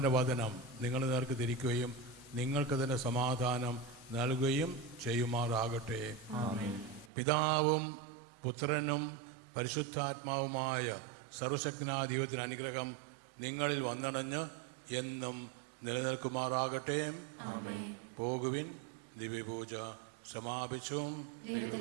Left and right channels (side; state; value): left; drops out; at 7.1 s